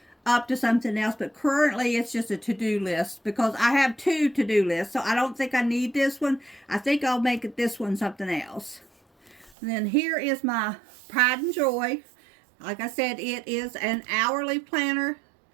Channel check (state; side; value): drops out; left; at 9.6 s